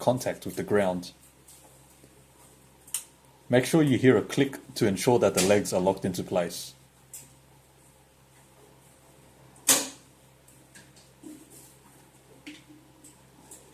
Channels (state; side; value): identical; both; correlation 1.00